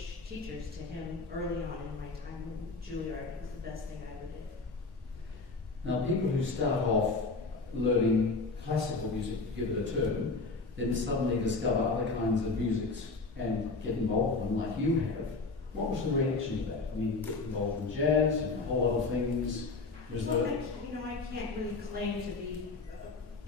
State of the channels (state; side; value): quieter; right; 3.8 dB